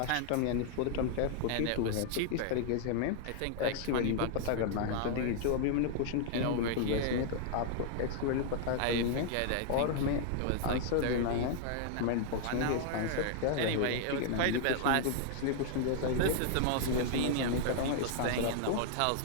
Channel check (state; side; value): different; both; correlation 0.00